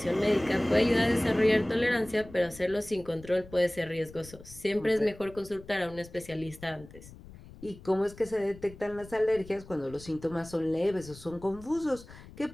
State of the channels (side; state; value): left; noise; rumble, 19 dB below the sound